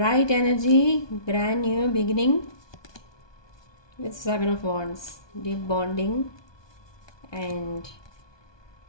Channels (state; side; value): late; right; 1.2 ms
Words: energy, brand new beginning with 7 of Wands. Deep bonding and